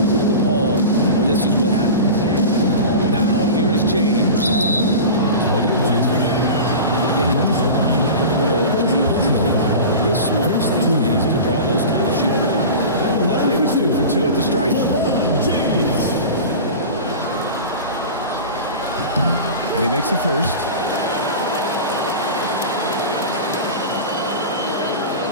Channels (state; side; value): inverted; both; correlation -0.32